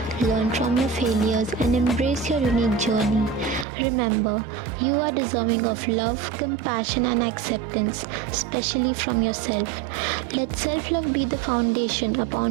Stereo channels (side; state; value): left; drops out; at 3.7 s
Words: learn from your failures, and embrace your unique journey. Remember, you are deserving of love, compassion, and acceptance, especially from yourself. Let self love be the foundation